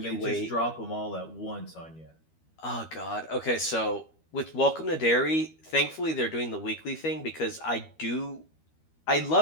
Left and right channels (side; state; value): right; late; 13 ms